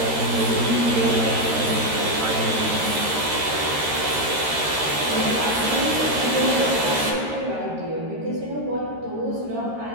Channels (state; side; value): late; left; 13 ms